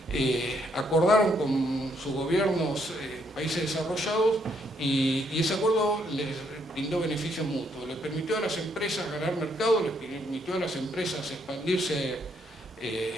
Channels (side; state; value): both; normal; correlation 0.72